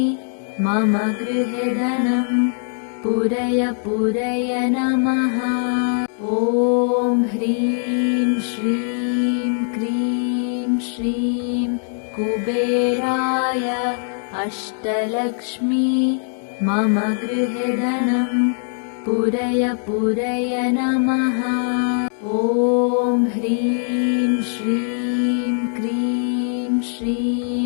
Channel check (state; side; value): silent; right; 58 dB below the other